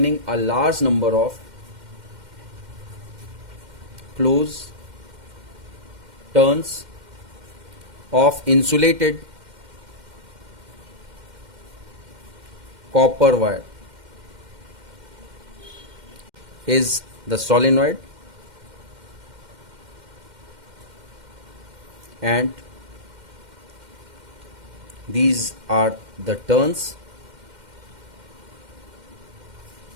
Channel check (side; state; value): left; late; 2.1 ms